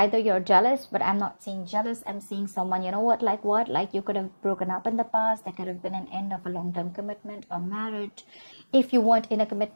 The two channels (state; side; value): inverted; both; correlation -1.00